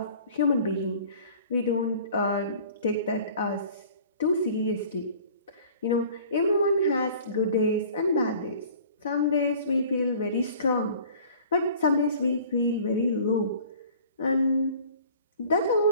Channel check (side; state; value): both; inverted; correlation -0.48